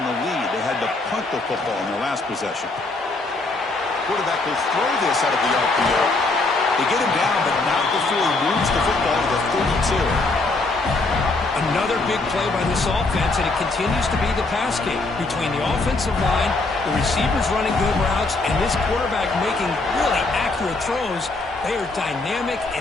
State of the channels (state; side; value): quieter; right; 3.3 dB